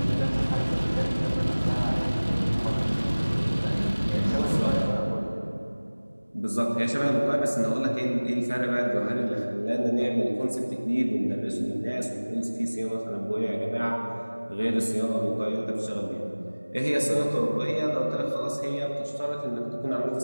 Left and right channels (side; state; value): both; inverted; correlation -1.00